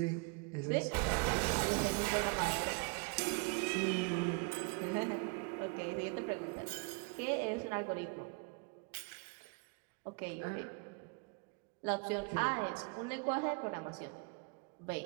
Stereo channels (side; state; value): left; quieter; 32.2 dB